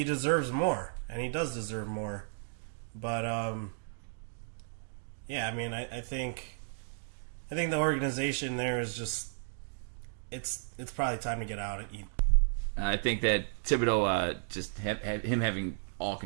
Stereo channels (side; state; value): left; silent; digital silence